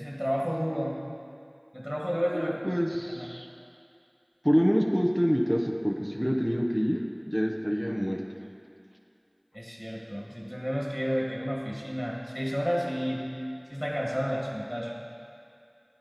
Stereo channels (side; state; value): both; identical; correlation 1.00